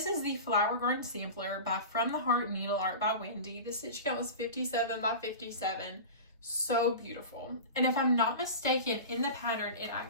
is the Flower Garden Sampler by From the Heart Needle Art by Wendy. The stitch count was 57 by 57. So beautiful. And if I'm not mistaken, in the pattern, it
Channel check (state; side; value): inverted; both; correlation -0.30